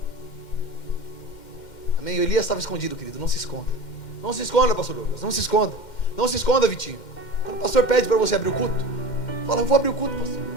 Amém? O Elias estava escondido, querido, não se esconda. Não se esconda, pastor Douglas, não se esconda. Não se esconda, Vitinho. Quando o pastor pede para você abrir o culto, fala: eu vou abrir o culto, pastor.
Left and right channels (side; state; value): right; late; 2.1 ms